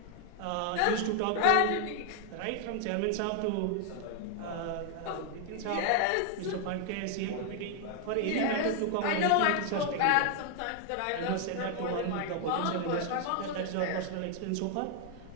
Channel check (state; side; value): different; both; correlation 0.00